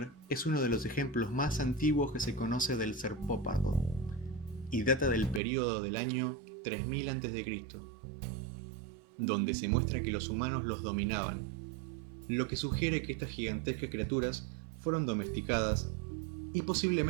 es uno de los ejemplos más antiguos que se conoce del serpópardo, y data del período del año 3000 a.C., donde se muestra que los humanos los dominaban, lo que sugiere que estas gigantescas criaturas fueron domesticadas y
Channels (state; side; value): drops out; left; at 5.4 s